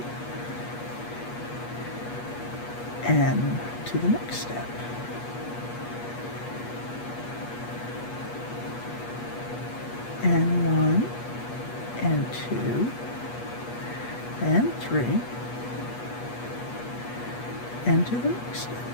and to the next step. And 1 and 2 and 3 and to the next step.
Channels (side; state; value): right; late; 8.3 ms